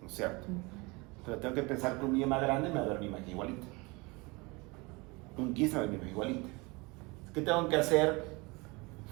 ¿No es cierto? Pero tengo que pensar que un niño más grande me va a ver mi imagen igualita. Un 15 me va a ver mi imagen igualita. ¿Qué tengo que hacer?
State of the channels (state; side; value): quieter; left; 25.9 dB